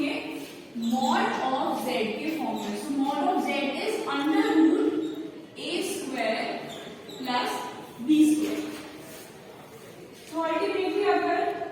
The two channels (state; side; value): identical; both; correlation 1.00